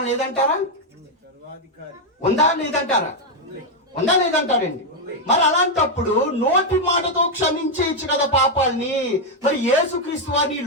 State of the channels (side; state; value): both; normal; correlation 0.01